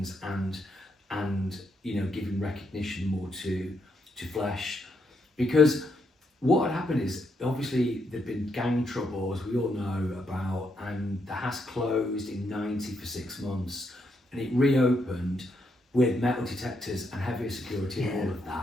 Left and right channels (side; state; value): both; normal; correlation 0.78